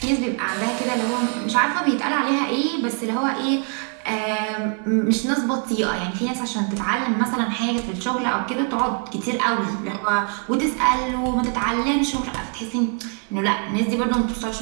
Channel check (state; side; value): quieter; left; 38.7 dB